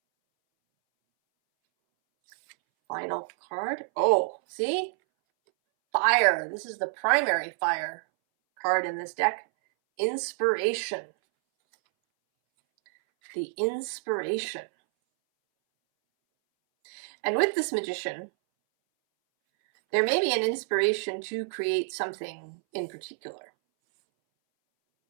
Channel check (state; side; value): silent; left; 59 dB below the other